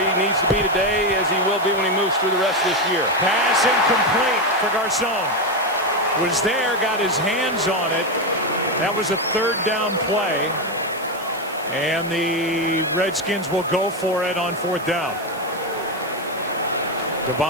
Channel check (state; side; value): noise; right; hiss, 19 dB below the sound